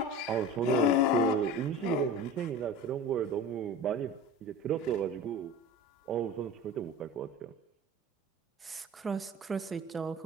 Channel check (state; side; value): normal; both; correlation 0.35